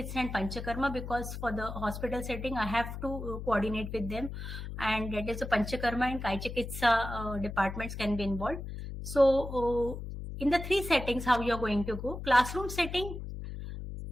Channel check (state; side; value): noise; left; hum, 8 dB below the sound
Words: and Panchakarma, because for the hospital setting I have to coordinate with them, and that is the Panchakarma and Kai Chikitsa departments can be involved. So in the 3 settings, how you are going to go. Classroom setting,